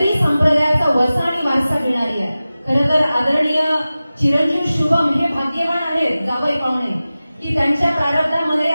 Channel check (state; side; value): inverted; both; correlation -0.96